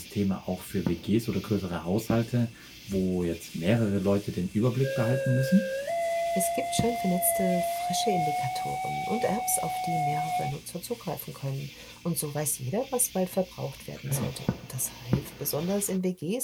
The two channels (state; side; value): identical; both; correlation 1.00